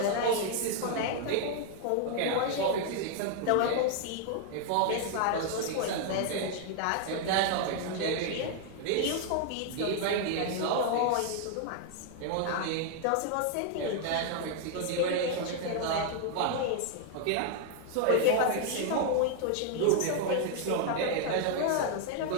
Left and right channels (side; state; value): both; different; correlation 0.00